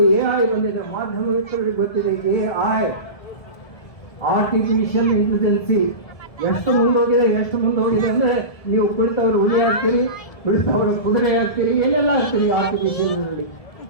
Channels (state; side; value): late; right; 1.7 ms